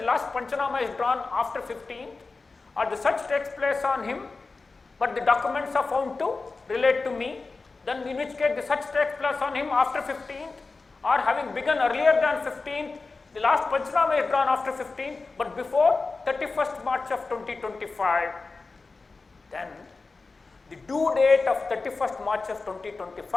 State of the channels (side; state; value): right; quieter; 3.9 dB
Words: last Panchanama is drawn after 15th, or the search takes place on him, but the documents are found to relate to me, then in which case the search takes place on him after 15th, or having begun earlier than 15th, the last Panchanama is drawn after 15th, but before 31st March of 2025, then the due date of 31st March of